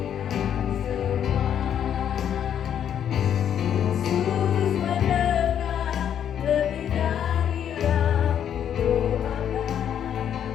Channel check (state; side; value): quieter; right; 9.3 dB